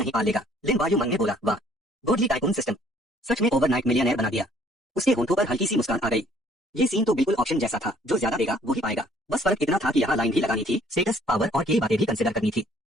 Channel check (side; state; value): both; normal; correlation 0.60